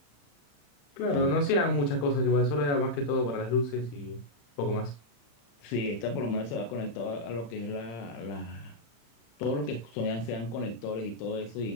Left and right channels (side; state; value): right; late; 35 ms